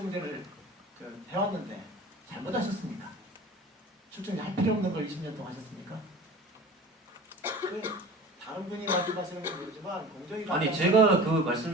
해왔는데 잘못하셨습니까? 출정제 할 필요 없는 걸 20년 동안 하셨습니까? 다른 분이 말씀하시는 건 모르지만 공정위가 아니 제가 그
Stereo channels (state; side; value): normal; both; correlation 0.39